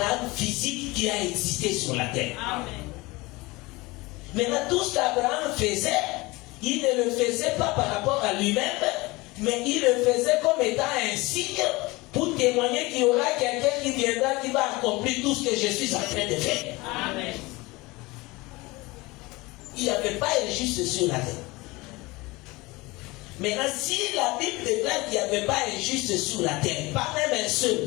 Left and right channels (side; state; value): right; quieter; 22.5 dB